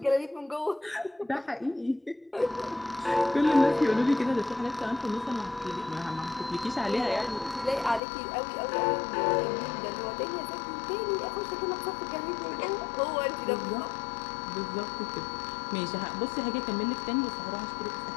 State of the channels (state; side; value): drops out; right; at 8.0 s